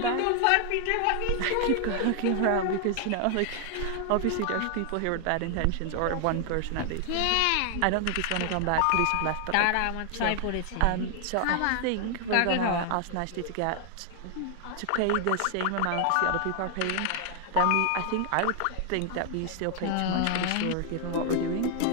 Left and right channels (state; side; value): different; both; correlation 0.00